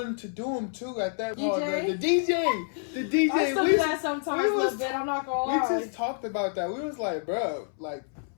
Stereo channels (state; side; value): silent; right; 59 dB below the other